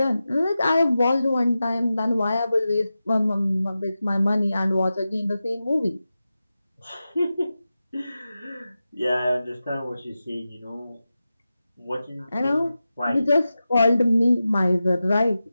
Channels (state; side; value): inverted; both; correlation -0.93